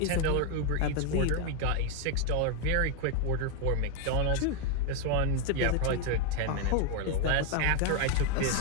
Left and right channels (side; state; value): both; different; correlation 0.01